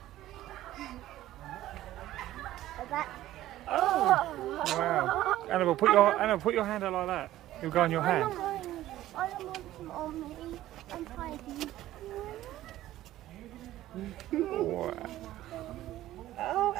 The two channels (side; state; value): left; quieter; 14.4 dB